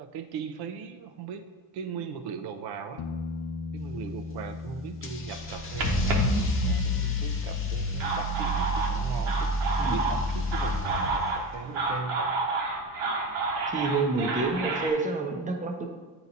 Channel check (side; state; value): both; normal; correlation 0.27